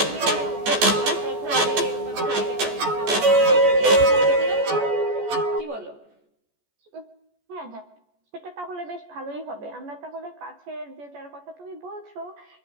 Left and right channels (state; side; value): late; left; 14 ms